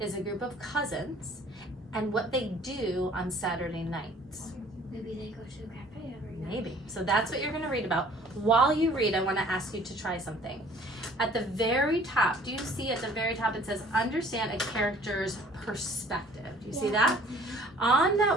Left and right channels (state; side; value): normal; both; correlation 0.53